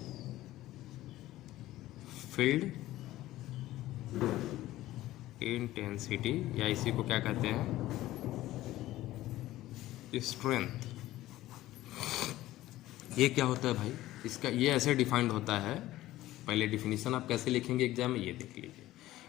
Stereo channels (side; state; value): right; quieter; 15.7 dB